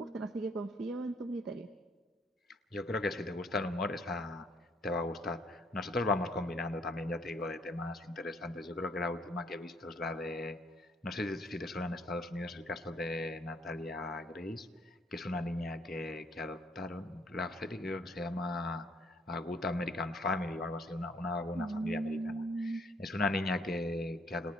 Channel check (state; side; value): normal; both; correlation 0.66